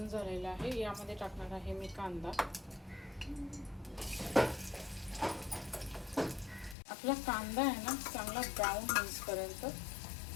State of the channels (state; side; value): drops out; right; at 6.8 s